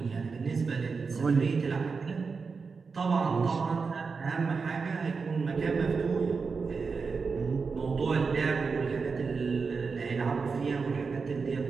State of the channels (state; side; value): quieter; left; 4.9 dB